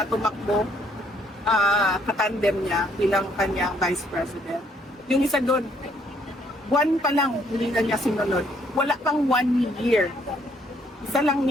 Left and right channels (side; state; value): both; normal; correlation 0.67